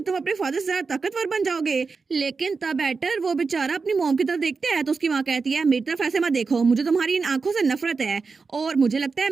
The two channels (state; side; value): quieter; left; 4.6 dB